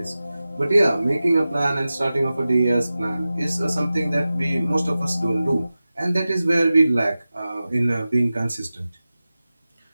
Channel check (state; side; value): inverted; both; correlation -0.95